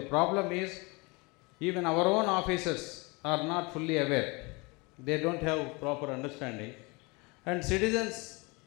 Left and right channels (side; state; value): right; quieter; 27.4 dB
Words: problem is even our own officers are not fully aware. They don't have proper understanding. And citizens,